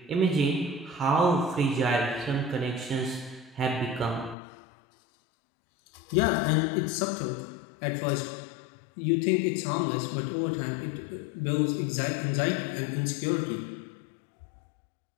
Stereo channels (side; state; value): right; drops out; at 4.4 s